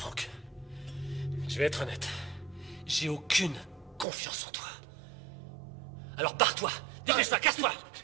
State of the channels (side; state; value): left; drops out; at 4.0 s